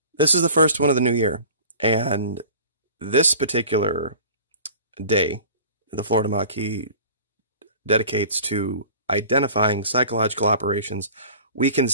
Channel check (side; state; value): both; inverted; correlation -0.44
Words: This is the first one of the new year, and this particular day, the Florida Maki dedicates to identifying psychological operations we can